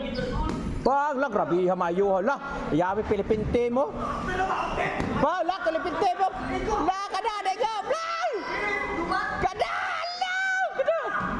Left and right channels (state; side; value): identical; both; correlation 1.00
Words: Bang, lah grabe ha mayo lah. Yawi Pilipinte mo. Ba, lah Pilipinte mo. La kada dego. Play. Kada.